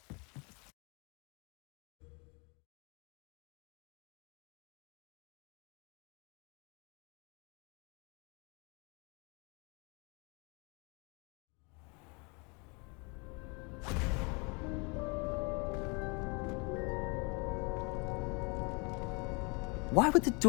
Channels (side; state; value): right; quieter; 30.9 dB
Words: Why would the